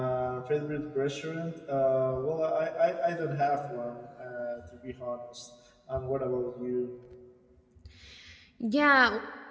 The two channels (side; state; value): both; identical; correlation 1.00